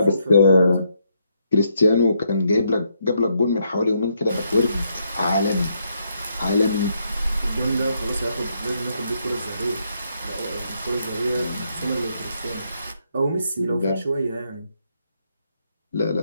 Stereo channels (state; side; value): inverted; both; correlation -0.76